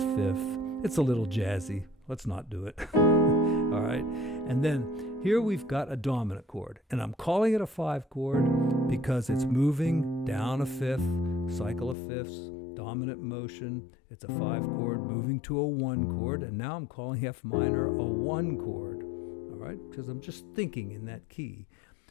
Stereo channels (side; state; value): right; drops out; at 12.0 s